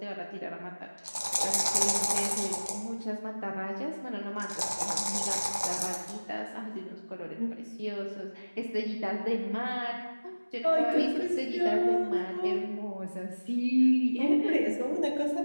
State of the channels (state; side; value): inverted; both; correlation -1.00